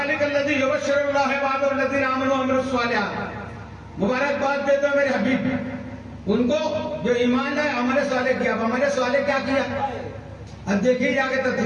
लज़ी युबश्शिरुल्लाहु इबादहुल्लज़ीना आमनू व अमिलुस्सालिहात। मुबारकबाद दे दो मेरे हबीब उनको जो ईमान लाए, अमल सालेह किया। अमल सालेह क्या किया? अब देखिए जाके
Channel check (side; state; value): both; identical; correlation 1.00